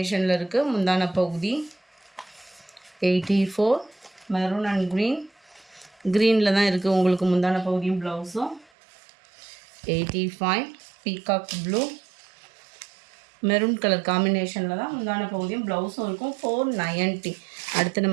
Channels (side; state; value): left; drops out; at 8.7 s